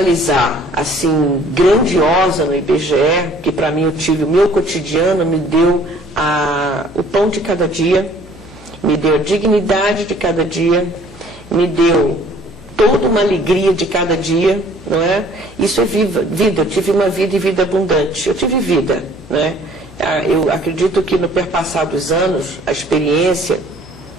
assim, grandiosa no IBGE, que para mim eu tive o meu cotidiano, me deu o pão de cada dia, me deu a dignidade de cada dia, me deu toda uma alegria de cada dia, não é? Isso é vida. Eu tive uma vida e vida abundante. Eu tive vida, não é? Eu acredito que no perpassar dos anos, a experiência,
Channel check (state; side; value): noise; left; hum, 22 dB below the sound